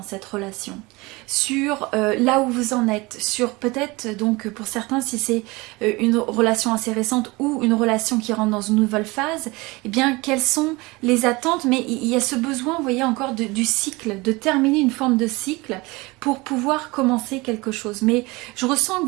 cette relation, sur là où vous en êtes, sur peut-être donc pour certains si c'est une relation assez récente ou une relation qui rentre dans une nouvelle phase, eh bien quelles sont les attentes, mais il y a ce besoin, vous voyez encore du cycle, de terminer une forme de cycle pour pouvoir commencer quelque chose. Mais je ressens que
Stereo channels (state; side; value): quieter; left; 23.6 dB